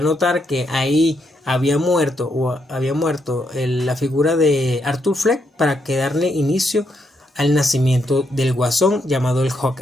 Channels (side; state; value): both; normal; correlation 0.78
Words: notar que ahí había muerto la figura de Arthur Fleck para que darle inicio al nacimiento del guasón llamado el